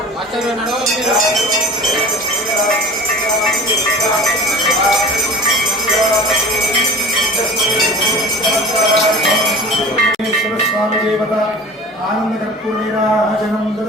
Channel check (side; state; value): both; normal; correlation 0.39